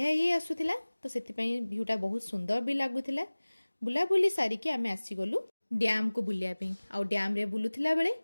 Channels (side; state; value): both; inverted; correlation -1.00